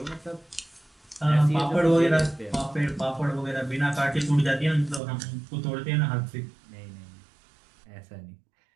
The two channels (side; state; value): left; drops out; at 5.0 s